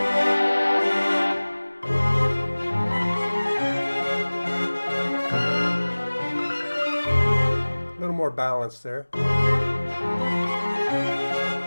A little more balance there.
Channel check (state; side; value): inverted; both; correlation -1.00